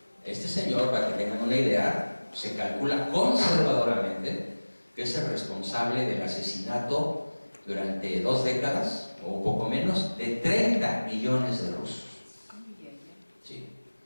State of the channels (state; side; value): inverted; both; correlation -1.00